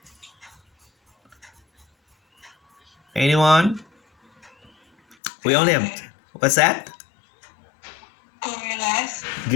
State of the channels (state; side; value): drops out; right; at 5.2 s